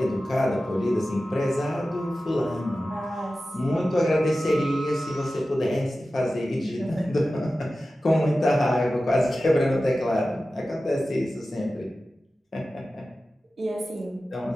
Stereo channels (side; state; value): both; normal; correlation 0.94